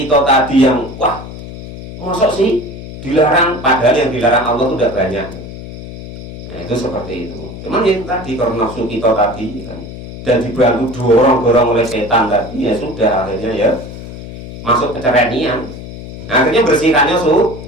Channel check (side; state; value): left; noise; hum, 11 dB below the sound